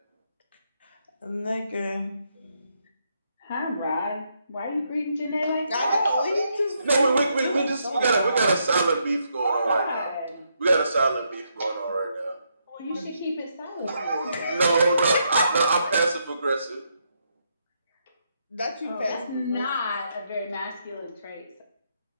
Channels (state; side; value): inverted; both; correlation -0.78